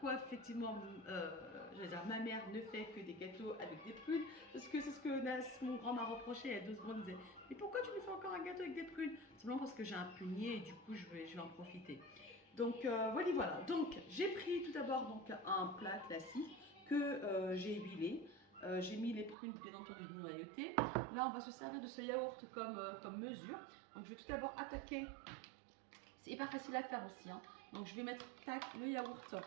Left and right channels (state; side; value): drops out; left; at 19.4 s